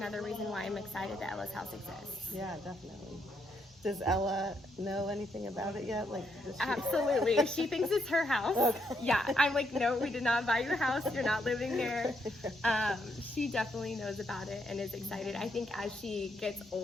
reason why I'm excited that Ella's house exists. Yeah, definitely. Does Ella know anything about it yet? Like, does she... Absolutely. She thinks it's her house. Okay. Yeah. I'm like, no, we did not buy your house. You're not living there. She definitely knows about it and is excited. I think as she gets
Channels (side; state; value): both; normal; correlation 0.77